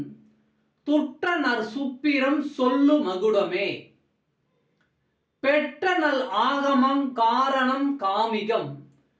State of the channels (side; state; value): both; identical; correlation 1.00